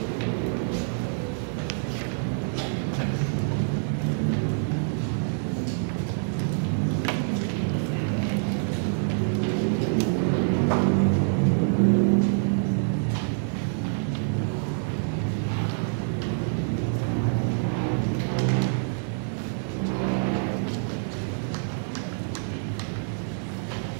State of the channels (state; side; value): silent; left; digital silence